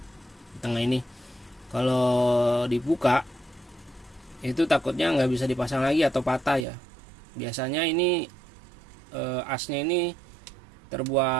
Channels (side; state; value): left; drops out; at 6.7 s